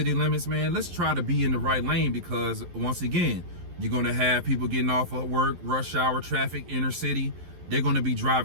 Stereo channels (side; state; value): left; late; 11 ms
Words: limits, man, let's try to be in the right lane, because once again, you're going to have people getting off of work, rush hour traffic, inner city. They're going to be